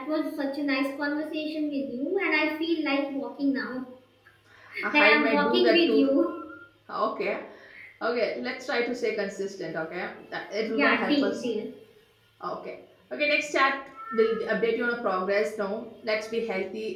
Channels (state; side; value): identical; both; correlation 1.00